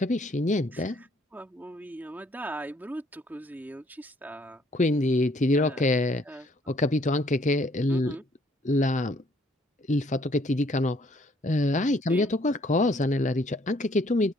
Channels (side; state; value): both; normal; correlation 0.64